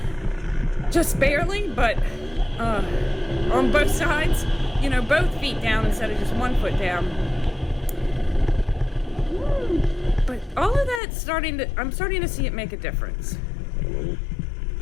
just barely, but on both sides, both feet down instead of just one foot down. But all of that I'm starting to see it make a difference.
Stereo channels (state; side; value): drops out; right; at 11.0 s